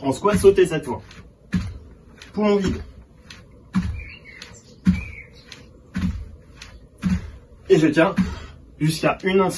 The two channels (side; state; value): both; identical; correlation 1.00